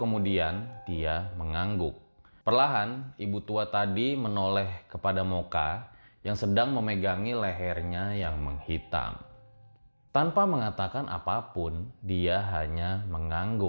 dia mengangguk. Perlahan, ibu tua tadi menoleh kepada Moka yang sedang memegangi lehernya yang menghitam. Tanpa mengatakan apapun, dia hanya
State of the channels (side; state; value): both; inverted; correlation -1.00